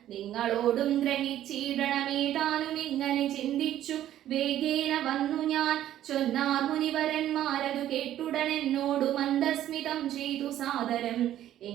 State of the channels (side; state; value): left; quieter; 12.2 dB